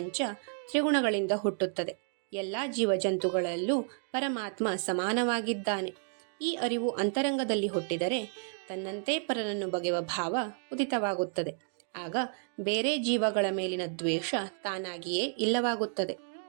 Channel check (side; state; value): left; silent; 57 dB below the other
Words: ತ್ರಿಗುಣಗಳಿಂದ ಹುಟ್ಟುತ್ತದೆ. ಎಲ್ಲ ಜೀವಜಂತುಗಳಲ್ಲೂ ಪರಮಾತ್ಮ ಸಮಾನವಾಗಿದ್ದಾನೆ. ಈ ಅರಿವು ಅಂತರಂಗದಲ್ಲಿ ಹುಟ್ಟಿದರೆ ತನ್ನಂತೆ ಪರನನ್ನು ಬಗೆಯುವ ಭಾವ ಉದಿತವಾಗುತ್ತದೆ. ಆಗ ಬೇರೆ ಜೀವಗಳ ಮೇಲಿನ ದ್ವೇಷ ತಾನಾಗಿಯೇ ಇಲ್ಲವಾಗುತ್ತದೆ.